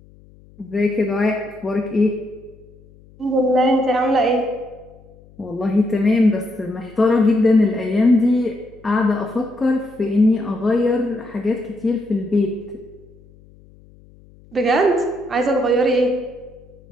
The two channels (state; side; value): noise; left; hum, 26 dB below the sound